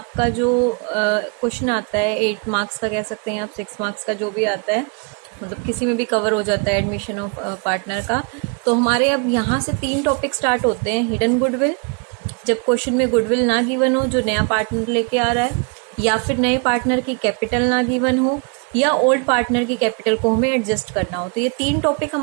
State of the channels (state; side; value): quieter; left; 36.9 dB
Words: जो क्वेश्चन आता है 8 मार्क्स का कह सकते हैं आप, 6 मार्क्स का जो भी आता है, मतलब किसी में भी कवर हो जाता है एडमिशन ऑफ पार्टनर का। तो हमारे अब यहाँ से 3 टॉपिक स्टार्ट होते हैं। हिडन गुडविल, जब क्वेश्चन में गुडविल ना गिवन हो जो नया पार्टनर लेके आ रहा है, या फिर नए पार्टनर की कैपिटल ना गिवन हो, या ओल्ड पार्टनर की कैपिटल को हमें एडजस्ट करना हो। तो ये 3 टॉपिक